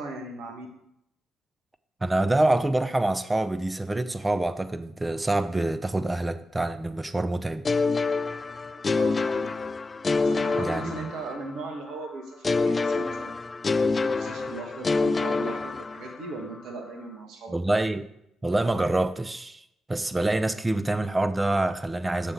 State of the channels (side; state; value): both; normal; correlation 0.93